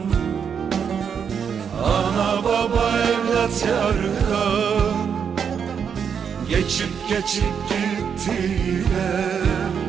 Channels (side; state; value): left; quieter; 7.2 dB